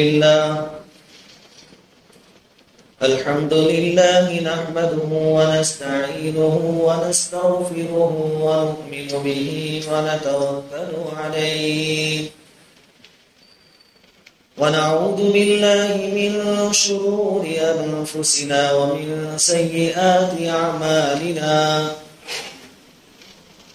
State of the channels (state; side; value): identical; both; correlation 1.00